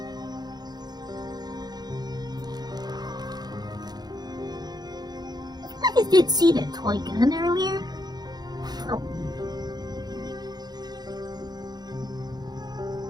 I did see that toy gun earlier. Oh.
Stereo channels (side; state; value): left; late; 0.20 ms